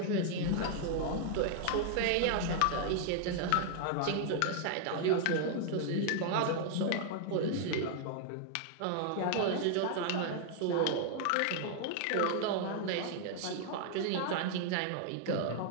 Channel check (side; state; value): both; different; correlation 0.00